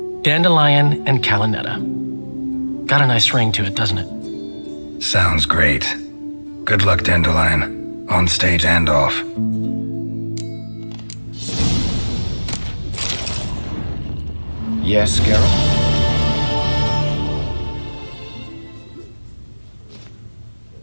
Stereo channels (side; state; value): both; inverted; correlation -1.00